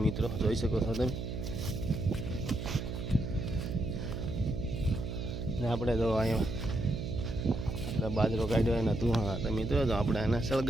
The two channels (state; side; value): noise; right; hum, 5 dB below the sound